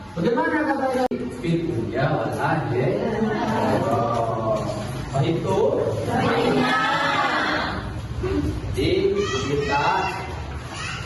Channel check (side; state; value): both; identical; correlation 1.00